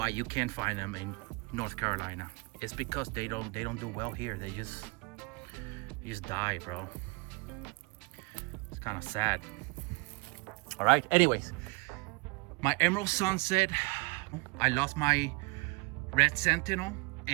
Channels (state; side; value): quieter; left; 27.4 dB